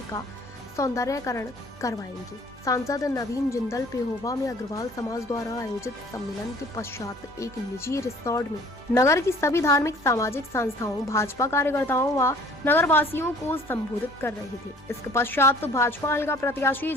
का सौंदर्यकरण करवाएंगे। सांसद नवीन जिंदल पेहोवा में अग्रवाल समाज द्वारा आयोजित सम्मेलन के पश्चात एक निजी रिसोर्ट में नगर की सभी धार्मिक सामाजिक संस्थाओं, भाजपा कार्यकर्ताओं व नगर वासियों को संबोधित कर रहे थे। इसके पश्चात भाजपा हल्का प्रत्याशी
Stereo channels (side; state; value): both; normal; correlation 0.52